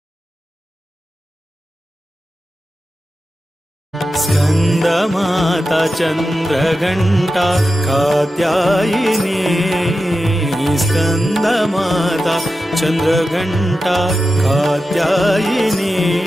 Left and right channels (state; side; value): normal; both; correlation 0.91